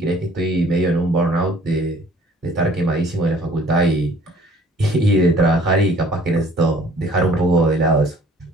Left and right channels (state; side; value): normal; both; correlation 0.55